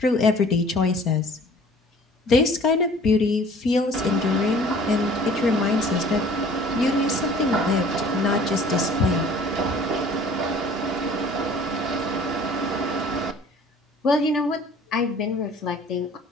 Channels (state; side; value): normal; both; correlation 0.50